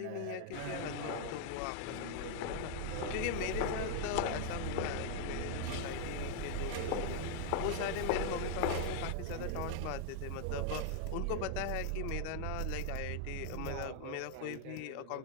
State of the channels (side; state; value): both; different; correlation 0.00